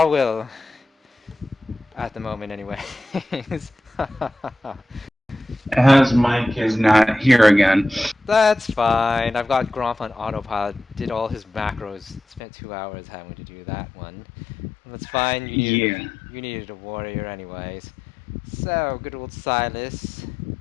At the moment, anyways. As Mike is not here again. That's fine. I've got Gromp on autopilot. Did all his macros. Spent 2 hours having to do that one. That's fine. Yeah. You needed a warrior, anyways. So good old Silas,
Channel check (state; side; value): drops out; right; at 12.4 s